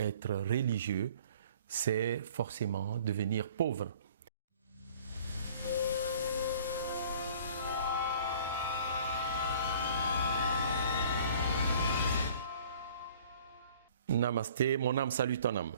religieux, c'est forcément devenir pauvre. Namasté, mon âme salue ton âme.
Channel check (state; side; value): inverted; both; correlation -0.52